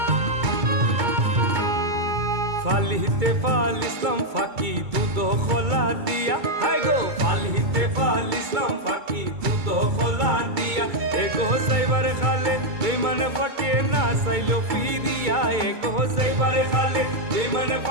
ফালিতে ফালিসলাম ফাঁকি দুধ খোলা দিয়া হাই গো ফালিতে ফালিসলাম ফাঁকি দুধ খোলা দিয়া এগো সাইবার খালে বেমান ফাঁকে না সাইলো ফিরিয়া এগো সাইবার খালে বেমান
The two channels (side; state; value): left; late; 2.2 ms